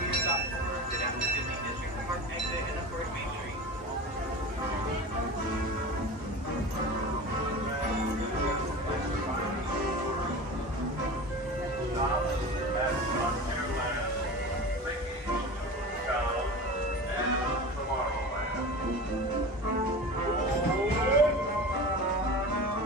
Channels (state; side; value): normal; both; correlation 0.32